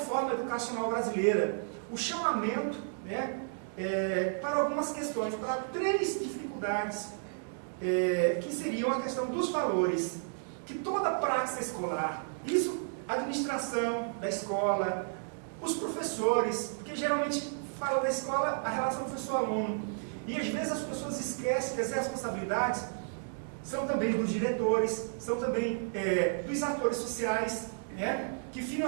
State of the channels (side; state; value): left; silent; digital silence